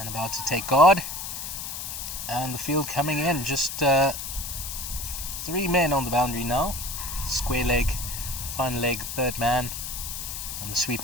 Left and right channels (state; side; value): noise; left; hiss, 6 dB below the sound